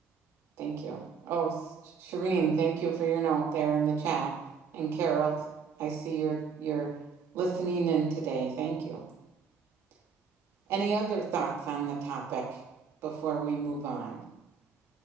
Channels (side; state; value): left; quieter; 6.0 dB